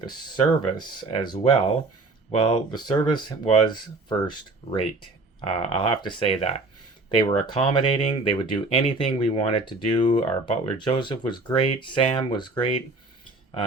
service as well. Well, the service was first rate. I'll have to say that. They were accommodating. They would do anything we wanted to do. Our butler Joseph was great. Sam was great.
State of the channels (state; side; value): quieter; left; 3.3 dB